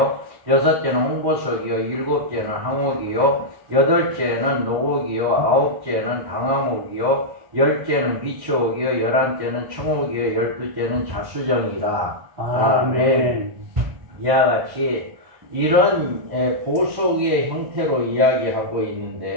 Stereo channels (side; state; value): left; late; 1.1 ms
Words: 여섯째는 홍보석이요, 일곱째는 항옥이요, 여덟째는 녹옥이요, 아홉째는 방암옥이요, 열째는 비추옥이요, 열한째는 청옥이요, 열두째는 자수정이다. 아멘. 이와 같이 이런 보석의 형태로 이야기하고